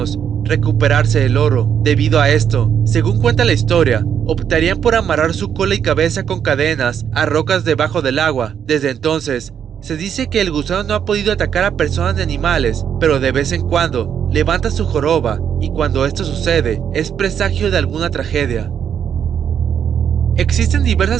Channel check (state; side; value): quieter; left; 8.4 dB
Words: recuperarse el oro. Debido a esto, según cuenta la historia, optarían por amarrar su cola y cabeza con cadenas a rocas debajo del agua. Desde entonces, se dice que el gusano no ha podido atacar a personas ni animales, pero de vez en cuando levanta su joroba, y cuando esto sucede, es presagio de alguna tragedia. Existen